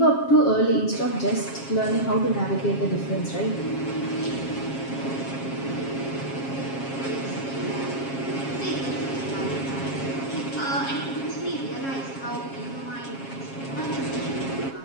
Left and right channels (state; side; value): late; right; 7.4 ms